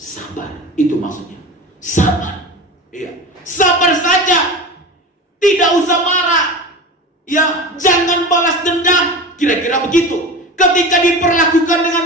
itu maksudnya. Sabar. Iya, sabar saja. Tidak usah marah. Ya, jangan balas dendam. Kira-kira begitu. Ketika diperlakukan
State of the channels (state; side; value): normal; both; correlation 0.31